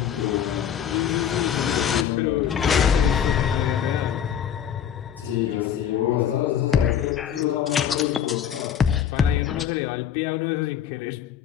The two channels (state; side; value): quieter; right; 9.0 dB